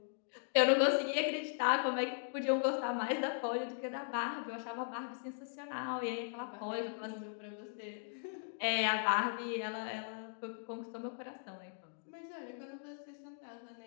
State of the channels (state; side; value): silent; right; digital silence